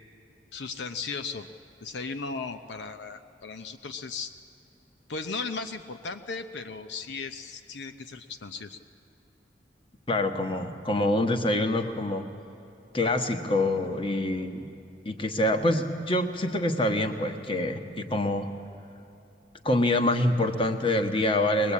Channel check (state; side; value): normal; both; correlation 0.48